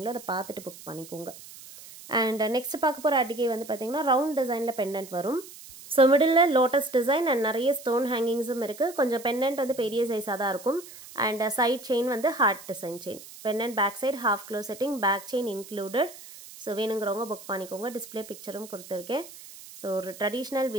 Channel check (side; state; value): right; noise; hiss, 17 dB below the sound